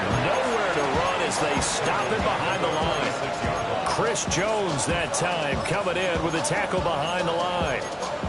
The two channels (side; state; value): both; identical; correlation 1.00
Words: Nowhere to run as they stop it behind the line. Chris Jones that time coming in with a tackle behind the line.